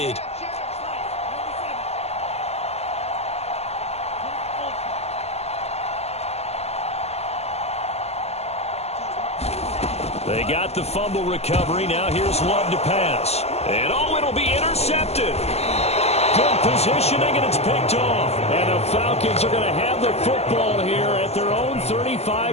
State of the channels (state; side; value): late; right; 0.30 ms